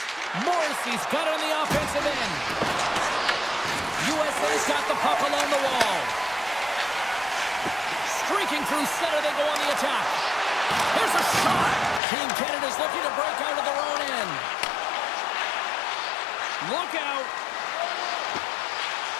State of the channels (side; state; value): right; drops out; at 12.0 s